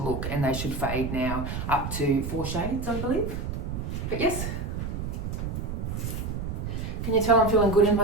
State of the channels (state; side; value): noise; right; rumble, 4 dB below the sound